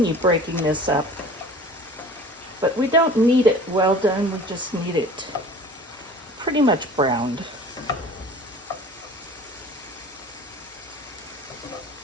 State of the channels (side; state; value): both; normal; correlation 0.43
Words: breaking this up, but we don't need it well done, we just need it pretty much browned.